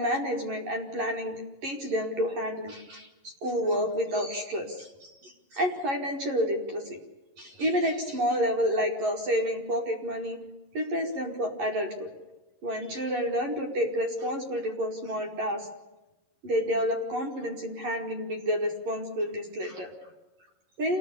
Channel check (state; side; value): late; left; 11 ms